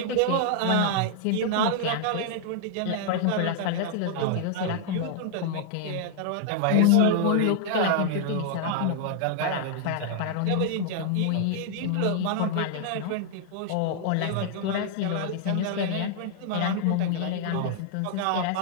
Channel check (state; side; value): different; both; correlation -0.01